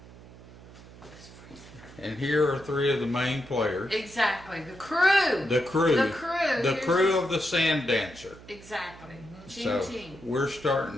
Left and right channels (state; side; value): noise; right; hum, 19 dB below the sound